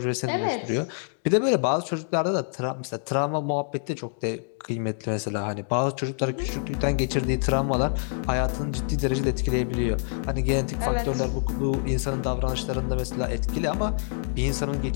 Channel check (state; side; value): silent; right; 60 dB below the other